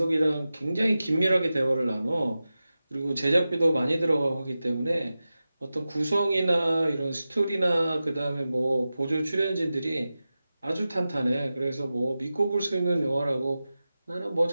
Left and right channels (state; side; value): inverted; both; correlation -0.94